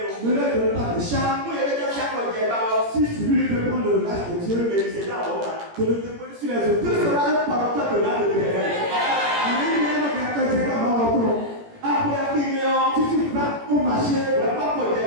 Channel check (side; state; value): left; late; 17 ms